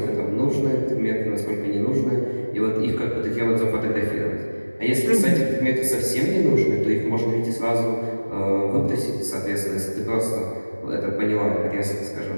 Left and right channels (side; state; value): both; inverted; correlation -1.00